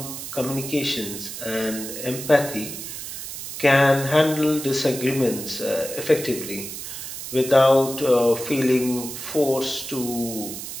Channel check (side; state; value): right; noise; hiss, 8 dB below the sound